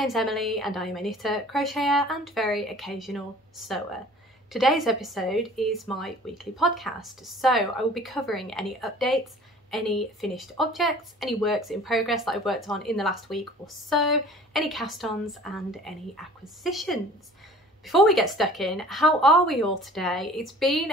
Emily and I am a knitter, crocheter and very occasional sewer. Today's episode is my weekly podcast, so I will be covering any updates, any finished objects, any works in progress that I've worked on in the last week or so, any cast-ons and any acquisitions. Before we get stuck in, how are we all today? It's been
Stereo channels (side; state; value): both; normal; correlation 0.47